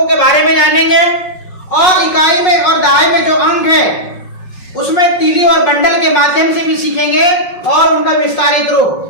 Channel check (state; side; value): late; right; 5.5 ms